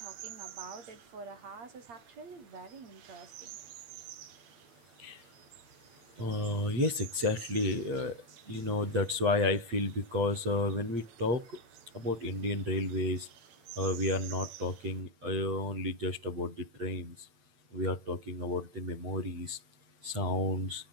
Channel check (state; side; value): late; left; 8.6 ms